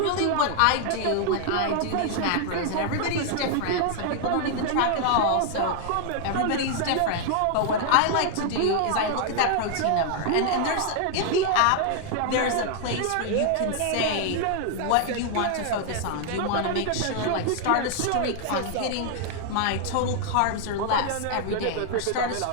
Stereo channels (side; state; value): both; different; correlation 0.00